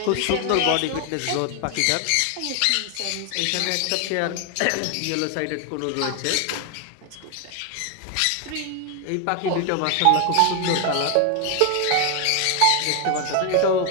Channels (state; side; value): different; both; correlation 0.00